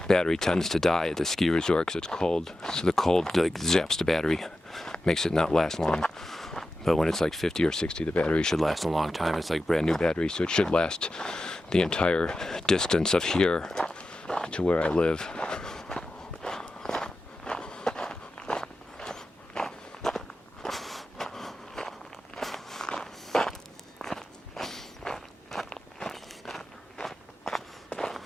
Battery tends to die at the ski resort because it's cold, so the cold like zaps the battery, makes it not last long. But when it's like 50 or 60, the battery should last a long time. It's like brand new battery, so it should last the entire distance of here to where I live.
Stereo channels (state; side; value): normal; both; correlation 0.92